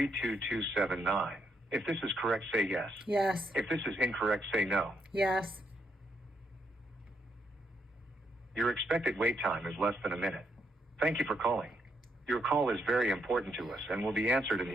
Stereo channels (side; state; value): both; normal; correlation 0.77